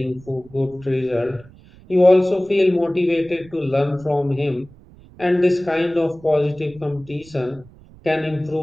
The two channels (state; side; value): noise; right; rumble, 23 dB below the sound